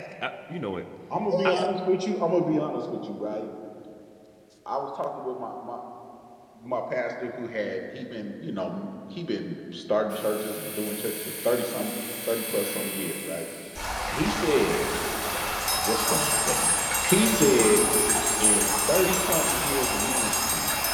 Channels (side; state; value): both; identical; correlation 1.00